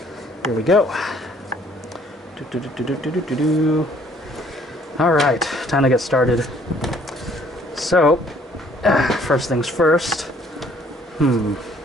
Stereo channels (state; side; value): normal; both; correlation 0.60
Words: Here we go. Alright, time to get started. So, first things first.